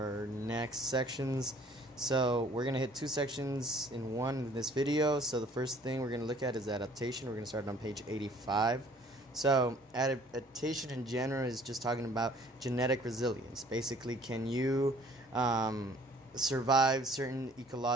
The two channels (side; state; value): both; normal; correlation 0.55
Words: next sections. So we're going to hit two sections in one in this video. So the first thing we're going to look at is adaptation. We're going to start on page 85. So adaptation in general is just talking about genetic resilience. Basically, can you survive certain